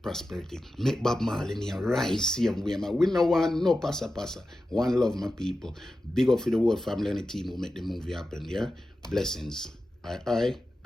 prosperity. Make Bob Marley near rise same way, man. We no want no passa. One love, my people. Big up for the whole family and the team who make the movie happen, yeah? Blessings. I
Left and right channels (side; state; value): both; normal; correlation 0.92